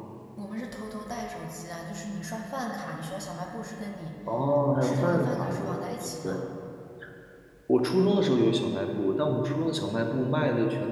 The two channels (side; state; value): both; identical; correlation 1.00